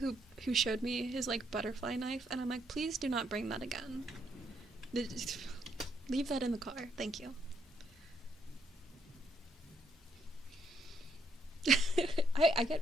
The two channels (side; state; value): both; normal; correlation 0.74